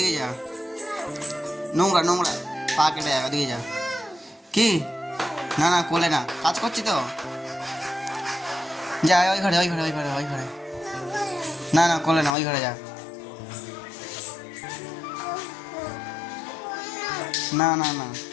যা, নোংরা নোংরা পা কেটে যা, ওদিকে যা। কি? না না কোলে না, কাজ করছি তো। যা ওই ঘরে ওই ঘরে ওই ঘরে ওই ঘরে, না না কোলে না, ওই ঘরে যা। না না না,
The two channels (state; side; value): drops out; right; at 12.3 s